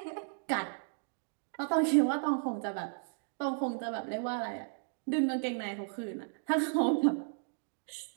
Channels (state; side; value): silent; left; digital silence